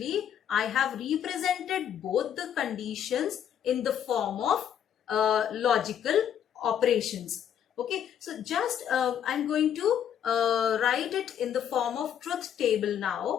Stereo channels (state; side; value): quieter; right; 9.3 dB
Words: I have represented both the conditions in the form of logical operations. Okay, so just I'm going to write it in the form of truth table